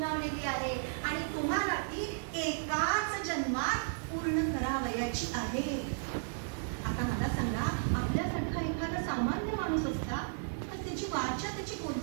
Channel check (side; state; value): left; silent; 55 dB below the other